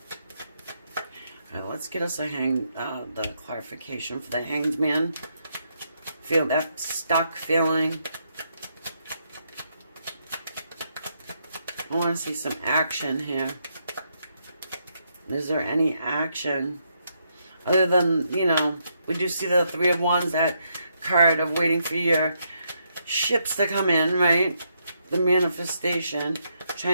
let's get us the clarification for the Hanged Man. Feel that stuck feeling. I want to see some action here. Is there any action? Other than, you know, we do see the Three of Wands, that card of waiting for your ships to come in, right? The manifestation,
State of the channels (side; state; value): both; inverted; correlation -0.78